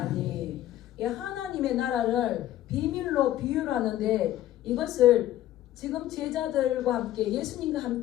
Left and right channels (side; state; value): right; quieter; 13.5 dB